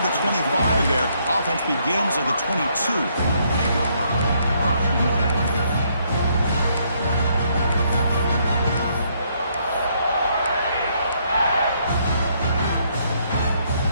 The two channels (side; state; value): both; inverted; correlation -0.71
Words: the 25 there. Offense begins at the 22.